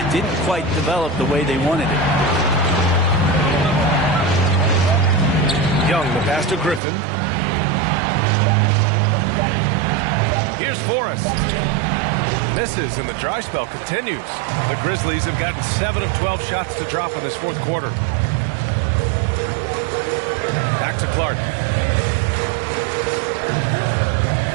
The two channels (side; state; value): left; drops out; at 6.8 s